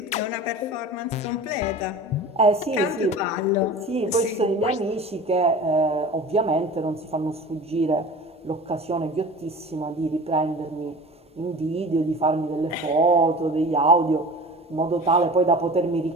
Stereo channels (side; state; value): both; normal; correlation 0.38